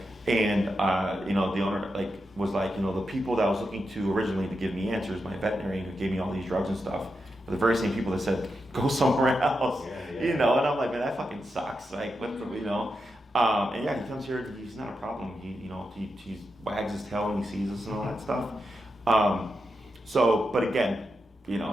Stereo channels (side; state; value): both; normal; correlation 0.87